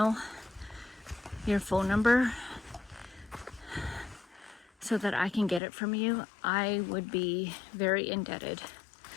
your phone number so that I can get it from you, I would be very indebted.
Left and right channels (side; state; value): right; drops out; at 5.6 s